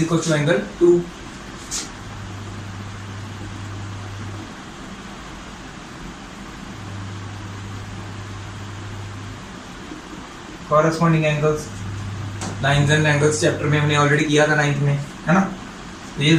equal to angle two. Corresponding angles, lines and angles chapter में हमने ऑलरेडी किया था 9th में, है ना। तो ये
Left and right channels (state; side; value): identical; both; correlation 1.00